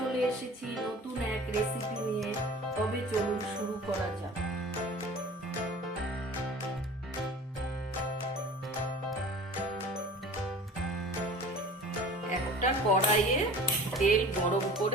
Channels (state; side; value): normal; both; correlation 0.43